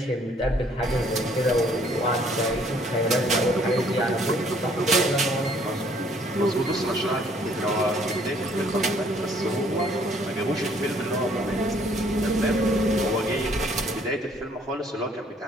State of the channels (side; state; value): both; normal; correlation 0.61